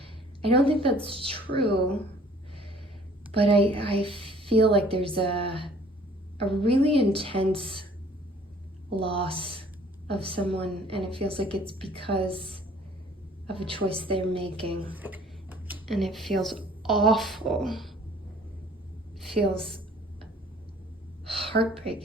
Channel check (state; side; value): normal; both; correlation 0.55